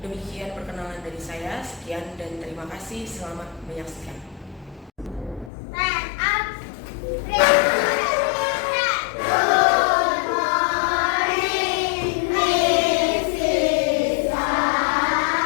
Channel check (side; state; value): right; drops out; at 5.5 s